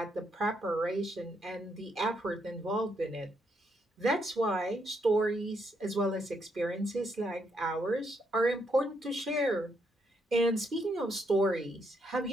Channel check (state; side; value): normal; both; correlation 0.76